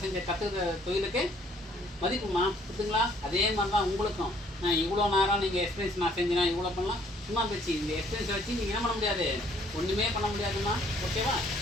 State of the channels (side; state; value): both; normal; correlation 0.62